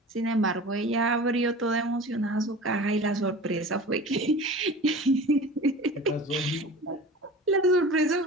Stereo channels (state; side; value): normal; both; correlation 0.37